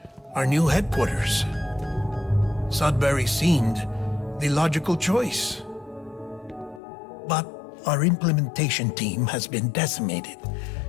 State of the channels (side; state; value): right; drops out; at 6.8 s